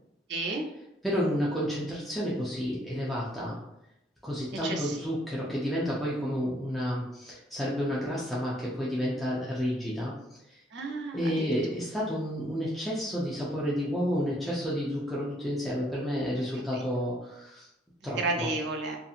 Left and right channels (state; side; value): normal; both; correlation 0.66